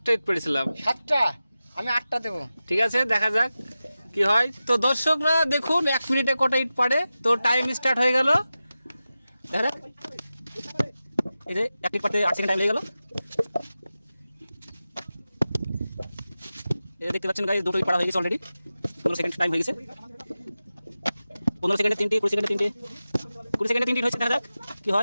ইট পেরেছিলাম। 7টা, আমি 8টা দেবো। ঠিক আছে, দেখা যাক কি হয়। তো দর্শকরা দেখুন 1 মিনিটে কটা ইট পারে। তো টাইম স্টার্ট হয়ে গেল, দেখা যাক। এই যে 1 ইট পাতে 8 সেকেন্ড টাইম লেগে গেল। এই দেখতে পাচ্ছেন গাইস, দুটো ইট পাড়া হয়ে গেছে অলরেডি। 15 সেকেন্ড টাইম হয়ে গেছে। 15 সেকেন্ডে 3টি, 20 সেকেন্ডে 3টি, 20 সেকেন্ডে 3টি হয়েছে। দেখা যাক কি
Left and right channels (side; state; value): both; inverted; correlation -0.94